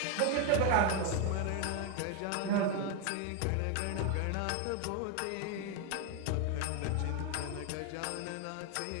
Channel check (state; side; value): different; both; correlation 0.01